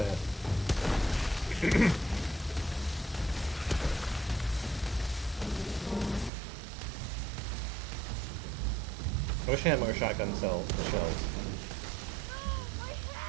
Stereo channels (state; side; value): drops out; left; at 6.3 s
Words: I wish I had more shotgun shells.